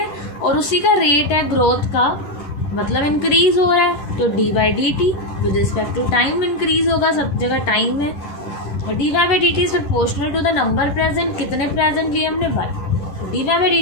और उसी का रेट है ग्रोथ का, मतलब इंक्रीज हो रहा है, तो d by d t with respect to time increase होगा, सब जगह टाइम है, d y by d t is proportional to the number present, कितने प्रेजेंट लिए हमने y, d y by d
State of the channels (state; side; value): late; right; 10 ms